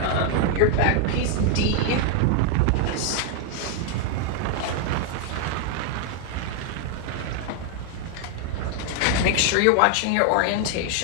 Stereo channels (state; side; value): different; both; correlation 0.00